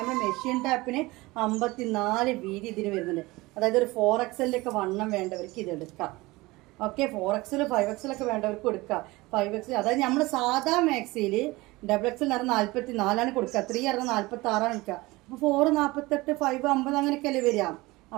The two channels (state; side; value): quieter; left; 21.3 dB